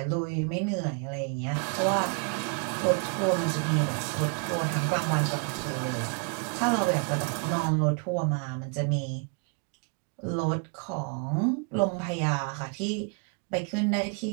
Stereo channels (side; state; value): left; quieter; 39.3 dB